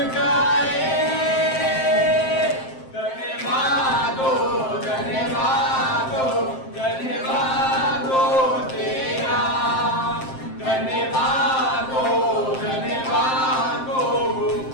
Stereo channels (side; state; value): right; late; 7.6 ms